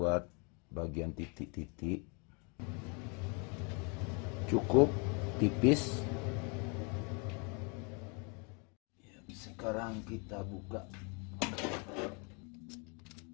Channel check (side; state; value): right; quieter; 34.1 dB